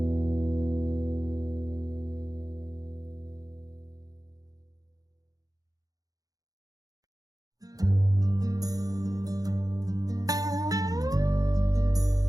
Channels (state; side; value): late; left; 0.18 ms